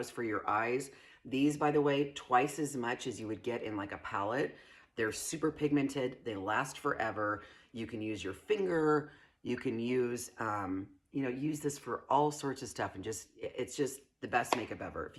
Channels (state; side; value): identical; both; correlation 1.00